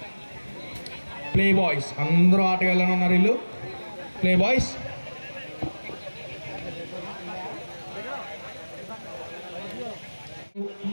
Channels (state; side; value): inverted; both; correlation -1.00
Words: Play boys అందరూ ఆటగాళ్ళని ఉన్నారు వీళ్ళు. ప్లే బాయ్స్